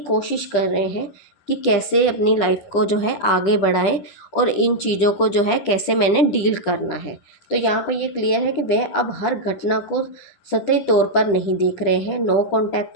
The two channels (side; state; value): right; late; 10 ms